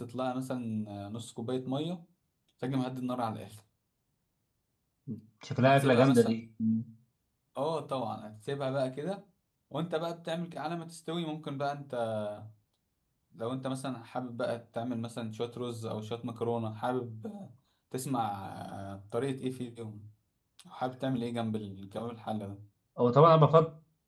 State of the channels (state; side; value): identical; both; correlation 1.00